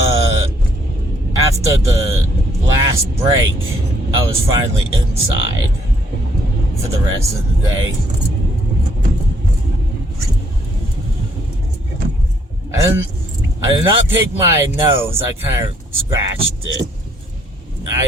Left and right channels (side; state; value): both; normal; correlation 0.68